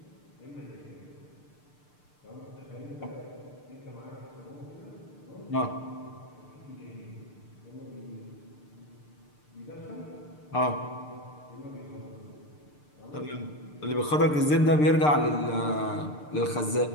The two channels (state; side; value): late; right; 6.7 ms